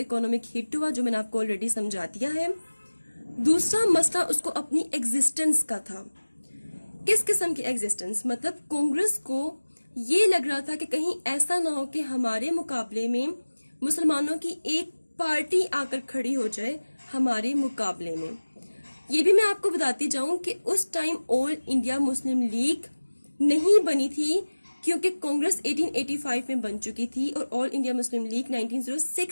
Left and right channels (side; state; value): both; inverted; correlation -1.00